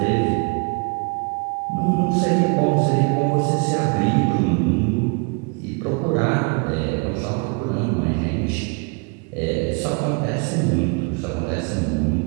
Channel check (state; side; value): quieter; left; 33.4 dB